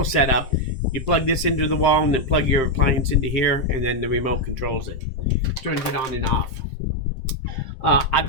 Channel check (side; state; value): right; late; 7.7 ms